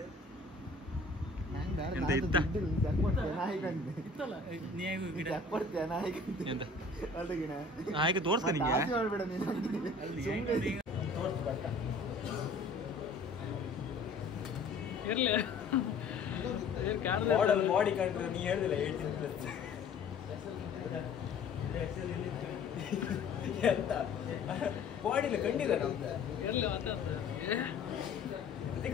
ಎಂತ ಇತ್ತ ಹಾಗೆ ತೋರ್ಸ್ತ ನಿಂಗೆ ಬಾಡಿ ಕಂಡ್ರೆ ನೀ ಹೇಳಿದಿಲ್ಲ 18+ ಎಂತ ಬಾಡಿಲ್ಲ ಕಂಡಿದ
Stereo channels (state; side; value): quieter; right; 3.8 dB